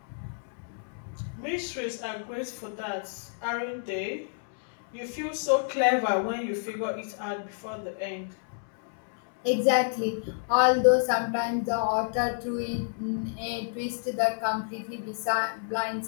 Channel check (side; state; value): right; silent; digital silence